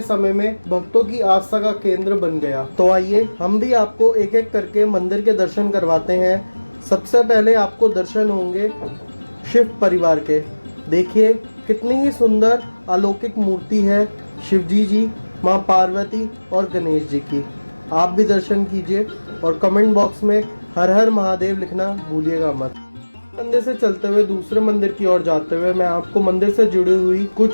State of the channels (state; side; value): inverted; both; correlation -1.00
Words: समय में भक्तों की आस्था का केंद्र बन गया। तो आइए हम भी आपको एक एक करके मंदिर के दर्शन करवाते हैं। सबसे पहले आपको दर्शन होंगे शिव परिवार के। देखिए कितनी ही सुंदर अलौकिक मूर्ति है शिवजी जी, माँ पार्वती और गणेश जी की। आप भी दर्शन कीजिए और कमेंट बॉक्स में हर हर महादेव लिखना भूलिएगा मत। मंदिर से चलते हुए दूसरे मंदिर की ओर जाते हुए मैं आपको मंदिर से जुड़ी हुई